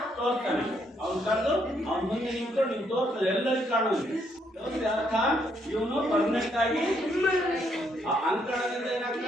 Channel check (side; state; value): both; normal; correlation 0.73